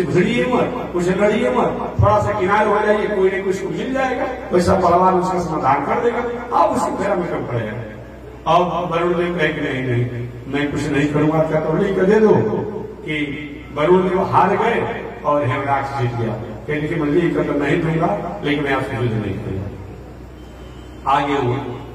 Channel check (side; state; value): both; identical; correlation 1.00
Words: भिड़िए मत, उससे लड़िए मत, थोड़ा सा किनारे हो जाइए, कोई न कोई उसको मिल जाएगा, वैसा बलवान उसका समाधान कर देगा, आप उसकी फेरा में कम पड़ेगा। अब वरुण देव कहे कि नहीं मैं कुछ नहीं करूंगा, क्या तो नहीं कर दे दो कि वरुण देव हार गए और हिरणाक्ष जीत गया। कहने की मंजिल कर तो नहीं दूंगा लेकिन मैं आपसे युद्ध नहीं करूंगा। आगे वो